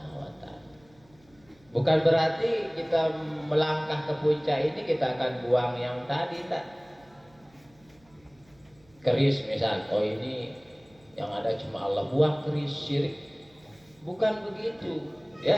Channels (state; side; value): noise; right; hum, 30 dB below the sound